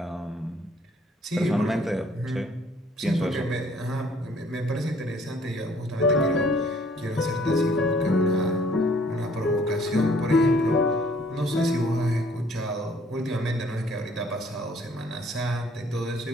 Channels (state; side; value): normal; both; correlation 0.60